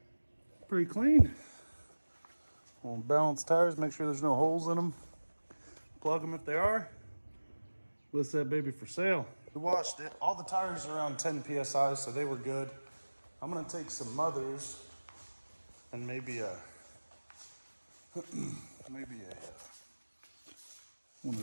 Pretty clean. We'll balance tires, make sure there's no holes in them. Plug them if they are. List that baby for sale. We washed it. All the tires are around 10 PSI, so they were good. I'm gonna take some mothers and maybe a one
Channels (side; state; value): both; inverted; correlation -1.00